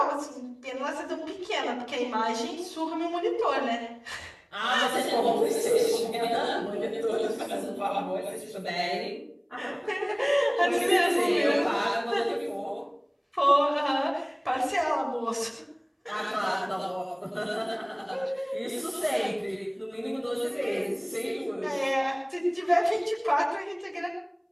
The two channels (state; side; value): identical; both; correlation 1.00